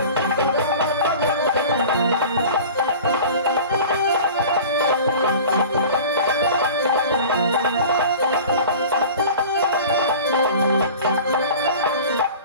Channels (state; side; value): inverted; both; correlation -0.40